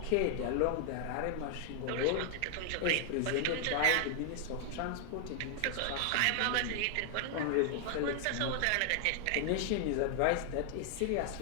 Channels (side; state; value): both; different; correlation 0.00